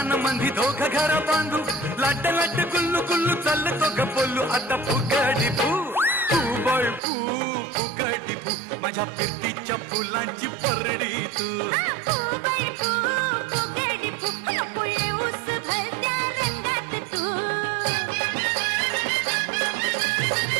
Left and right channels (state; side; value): drops out; left; at 7.0 s